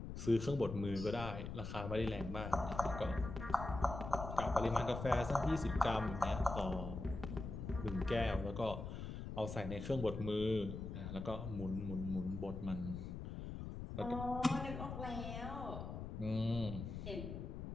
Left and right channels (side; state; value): left; noise; rumble, 7 dB below the sound